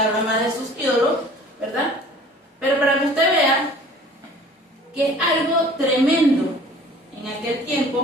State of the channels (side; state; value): both; normal; correlation 0.48